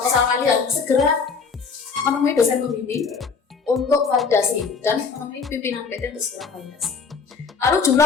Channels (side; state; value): right; quieter; 5.3 dB